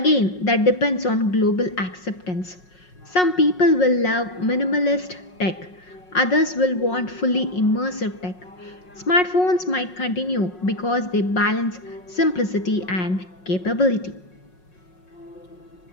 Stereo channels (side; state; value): right; late; 5.5 ms